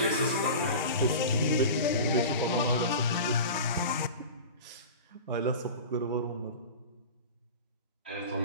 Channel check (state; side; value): inverted; both; correlation -0.33